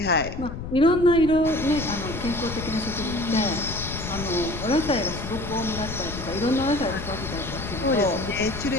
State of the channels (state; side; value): noise; left; rumble, 8 dB below the sound